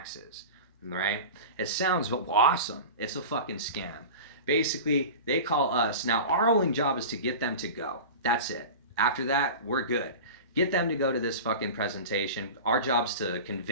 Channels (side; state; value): both; inverted; correlation -0.32